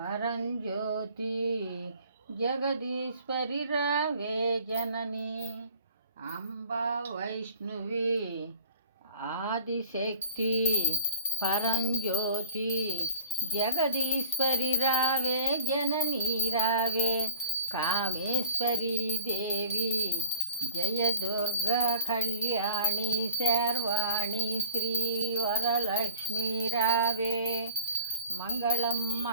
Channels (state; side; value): inverted; both; correlation -0.46